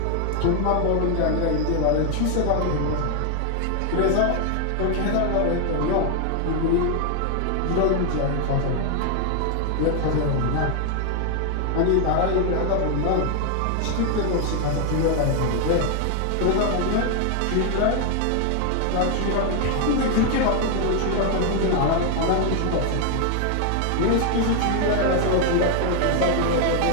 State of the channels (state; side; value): different; both; correlation 0.00